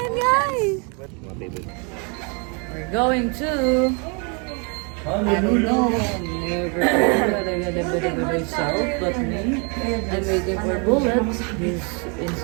guys! We're going to... I don't know. Never myself, but me. I'm waiting for bullets. He's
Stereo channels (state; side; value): quieter; left; 34.5 dB